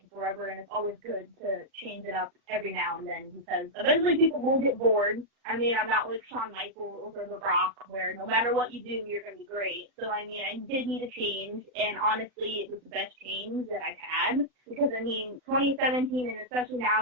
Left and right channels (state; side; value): late; left; 39 ms